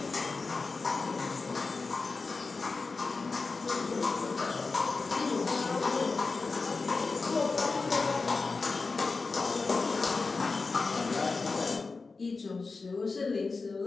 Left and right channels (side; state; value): right; quieter; 4.1 dB